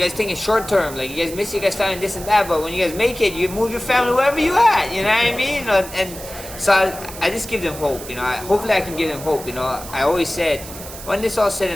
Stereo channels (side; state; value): right; noise; hiss, 13 dB below the sound